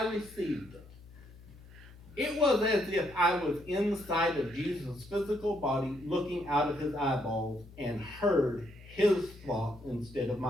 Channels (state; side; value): noise; left; hum, 20 dB below the sound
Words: received it. It was as if I was inside of Jesus' physical body, looking out of his eyeballs, and heard his thought instead of